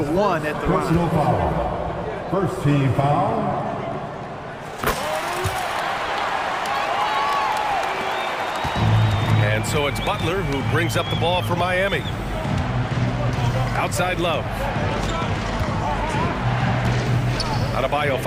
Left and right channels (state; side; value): identical; both; correlation 1.00